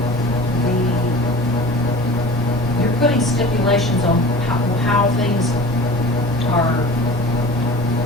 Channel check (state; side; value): normal; both; correlation 0.40